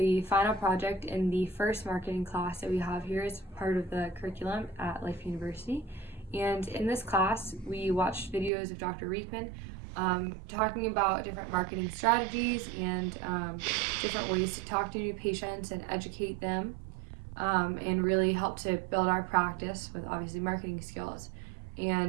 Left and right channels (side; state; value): left; drops out; at 8.5 s